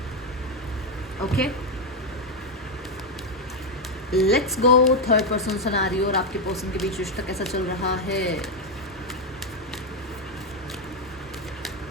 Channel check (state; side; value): normal; both; correlation 0.05